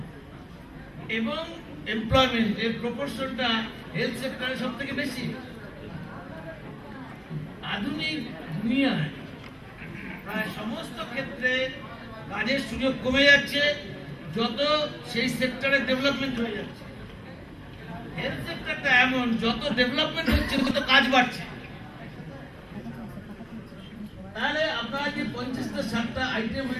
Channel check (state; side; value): identical; both; correlation 1.00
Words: এবং এমপ্লয়মেন্ট এর প্রপোর্শনটা হেলথ সেক্টরে সব থেকে বেশি। আধুনিক দুনিয়ায় প্রায় সমস্ত ক্ষেত্রে কাজের সুযোগ কমে যাচ্ছে যত সেই সেক্টরে ডেভেলপমেন্ট হয়ে যাচ্ছে। হেলথ সেক্টরটা এমন, যত ডেভেলপমেন্ট হচ্ছে তত কাজ বাড়ছে। তাহলে আপনারা যে 50টা 60টা আইটেম